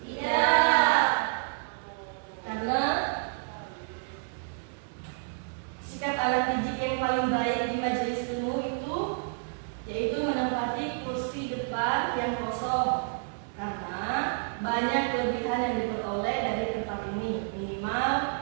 Iya. Karena sikap anak didik yang paling baik di majelis ilmu itu yaitu menempati kursi depan yang kosong, karena banyak kelebihan yang diperoleh dari tempat ini.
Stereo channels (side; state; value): left; silent; 58 dB below the other